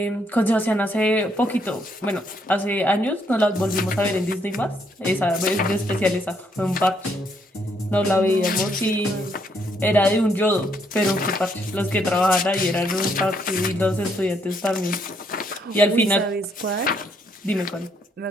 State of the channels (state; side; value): normal; both; correlation 0.72